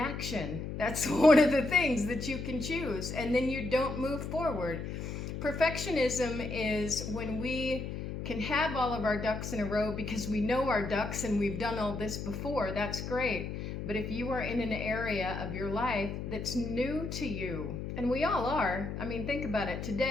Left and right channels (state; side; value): noise; left; hum, 6 dB below the sound